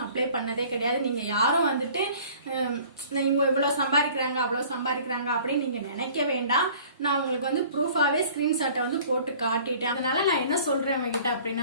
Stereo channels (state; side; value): inverted; both; correlation -0.50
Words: அப்ளை பண்ணதே கிடையாது. நீங்க யாரும் வந்துட்டு இவங்க இவ்வளவு சம்பாதிக்கிறாங்க அவ்வளவு சம்பாதிக்கிறாங்க அப்படின்னு நீங்க நினைக்க வேண்டாம். நான் உங்களுக்கு வந்து ப்ரூஃபாவே ஸ்கிரீன்ஷாட்டை வந்து போட்டு காட்டிட்டேன். அதனால நான் என்ன சொல்றேன் உங்ககிட்ட